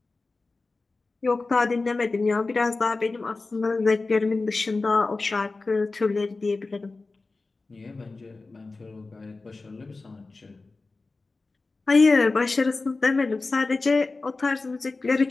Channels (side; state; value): right; quieter; 3.6 dB